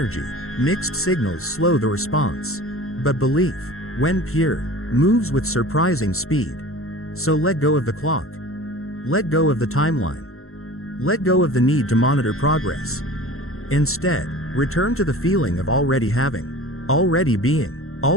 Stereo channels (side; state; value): right; late; 0.62 ms